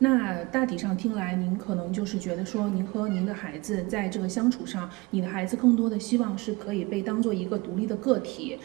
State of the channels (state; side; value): quieter; left; 24.3 dB